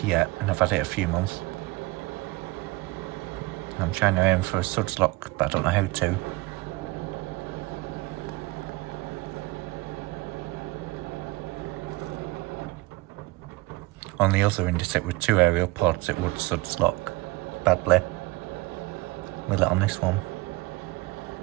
yet, and I've had it a few months. I'm trying to aim for a suds lock, but I don't know how to. On the other Indesit with 2 aerial pods, it would suds lock badly. Will it on this one?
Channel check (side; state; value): left; quieter; 21.3 dB